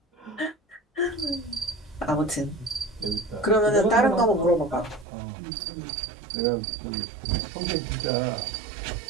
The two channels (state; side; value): drops out; left; at 5.1 s